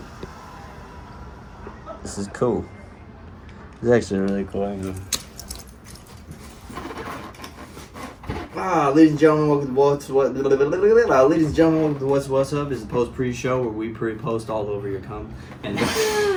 This is cool. This is actually really cool. Ladies and gentlemen, welcome to What's What. Ladies and gentlemen, welcome to What's Up. This is the post pre-show where we pre-post all over your cum. And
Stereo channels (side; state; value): both; identical; correlation 1.00